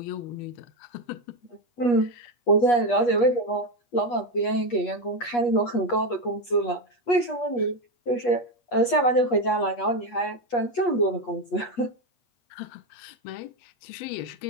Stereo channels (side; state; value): right; late; 8.3 ms